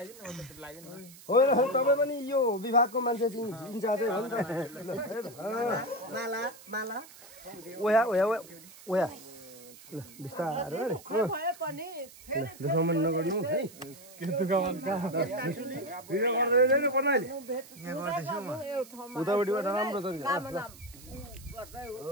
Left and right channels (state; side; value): noise; right; hiss, 20 dB below the sound